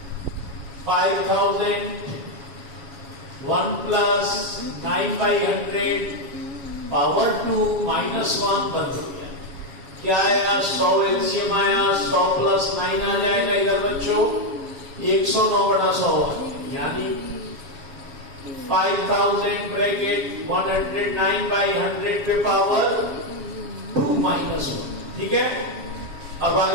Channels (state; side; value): late; left; 7.2 ms